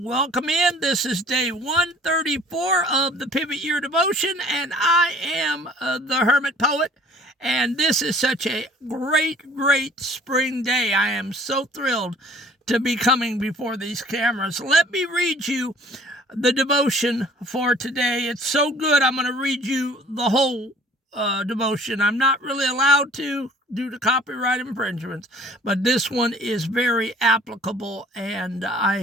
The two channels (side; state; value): both; normal; correlation 0.53